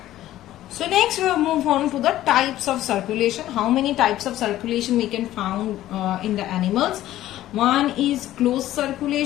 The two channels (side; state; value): right; quieter; 14.0 dB